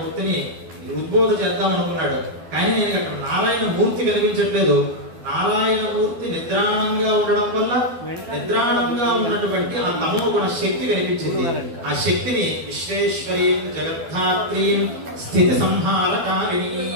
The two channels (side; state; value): left; late; 12 ms